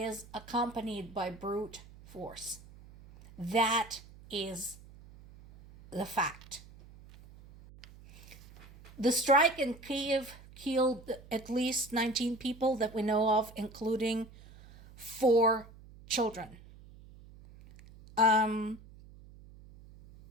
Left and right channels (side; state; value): right; noise; hum, 20 dB below the sound